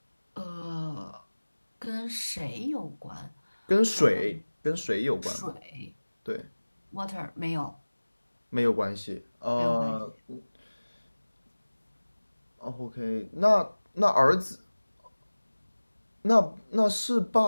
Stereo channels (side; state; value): both; inverted; correlation -1.00